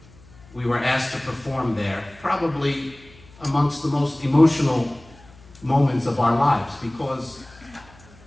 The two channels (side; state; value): left; noise; hum, 24 dB below the sound